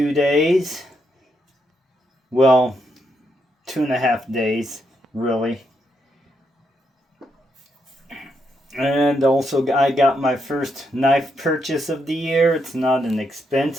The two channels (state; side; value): normal; both; correlation 0.79